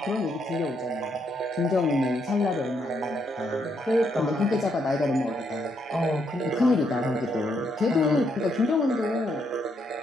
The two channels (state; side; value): normal; both; correlation 0.76